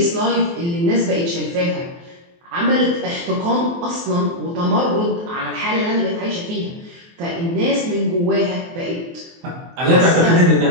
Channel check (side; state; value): left; late; 23 ms